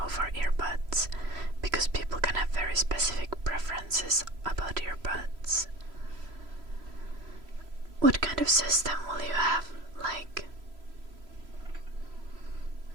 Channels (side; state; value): left; late; 3.0 ms